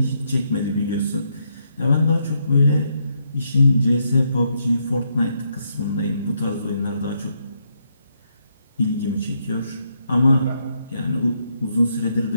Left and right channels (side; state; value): both; inverted; correlation -0.77